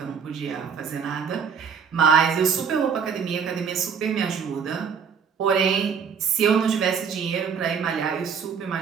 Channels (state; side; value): quieter; left; 6.6 dB